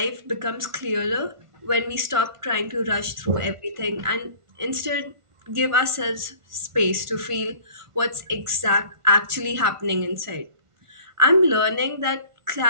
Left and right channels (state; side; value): late; left; 1.5 ms